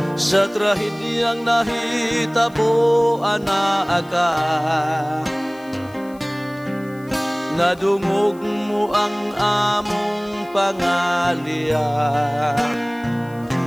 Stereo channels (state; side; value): noise; left; hiss, 27 dB below the sound